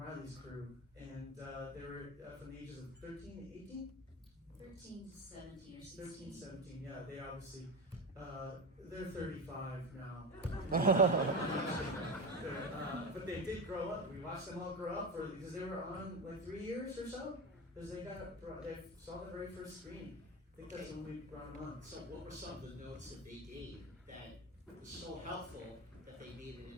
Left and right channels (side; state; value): both; normal; correlation 0.21